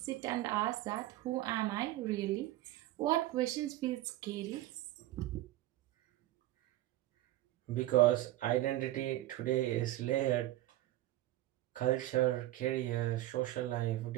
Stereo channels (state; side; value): quieter; left; 15.7 dB